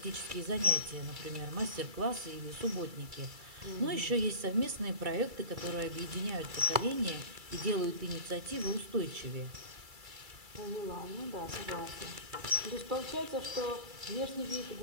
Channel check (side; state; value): left; late; 2.3 ms